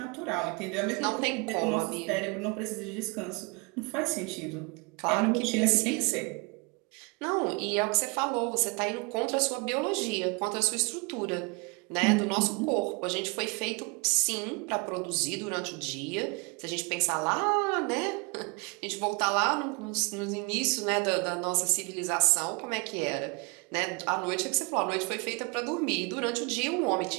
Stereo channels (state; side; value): quieter; left; 30.0 dB